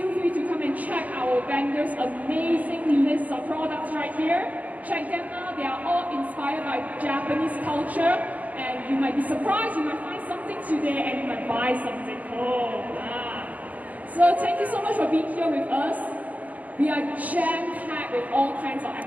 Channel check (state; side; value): late; left; 0.075 ms